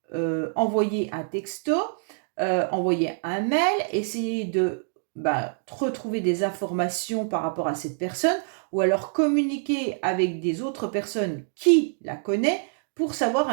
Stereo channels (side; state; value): left; silent; digital silence